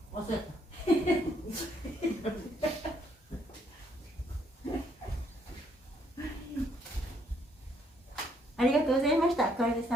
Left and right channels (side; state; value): both; normal; correlation 0.69